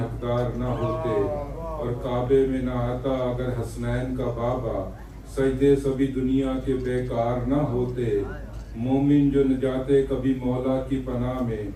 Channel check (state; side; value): identical; both; correlation 1.00